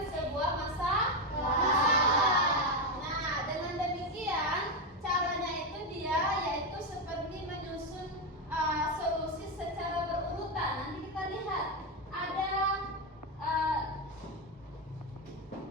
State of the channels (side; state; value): both; normal; correlation 0.08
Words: sebuah masalah. Nah, dengan demikian caranya itu dia yaitu seperti menyusun solusi secara berurutan. Nanti kita lihat ada